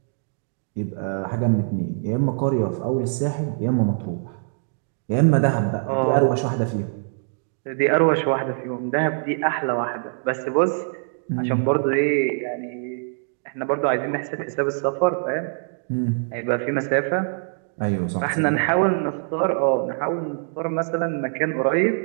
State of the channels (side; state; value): left; silent; digital silence